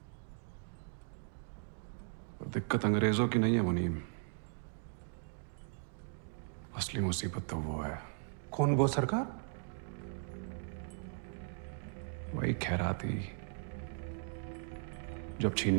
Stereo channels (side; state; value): left; silent; 53 dB below the other